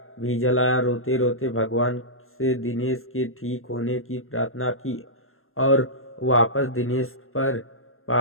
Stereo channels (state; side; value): late; right; 0.61 ms